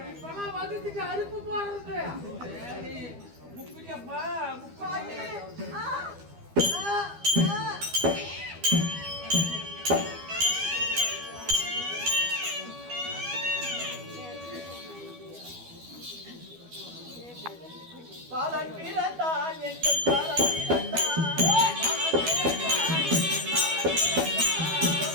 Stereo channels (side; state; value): left; late; 12 ms